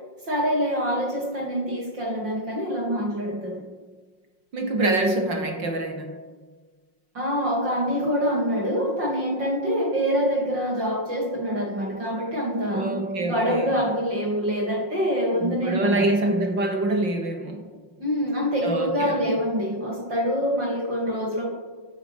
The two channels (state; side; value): late; left; 5.6 ms